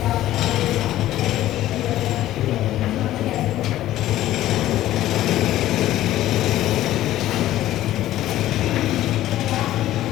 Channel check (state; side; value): quieter; right; 14.1 dB